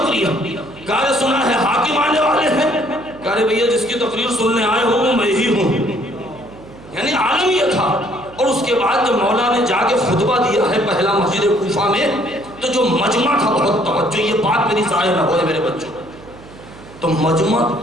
کہا سنا ہے حاکم آنے والے ہیں۔ کہا بھیا جس کی تقریر سننے آئے ہوں وہ میں ہی ہوں، یعنی عالم یہ تھا۔ اور اس کے بعد جب مولا نے جا کے خطبہ دیا ہے پہلا مسجد کوفہ میں، تو جو مجمع تھا، بہت توجہ، یہ بات میری ضائع نہ ہوئے میرے بچوں، تو مجمع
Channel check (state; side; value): noise; right; hum, 20 dB below the sound